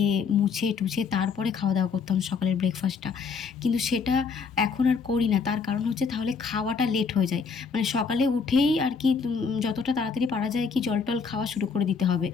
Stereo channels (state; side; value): quieter; right; 5.5 dB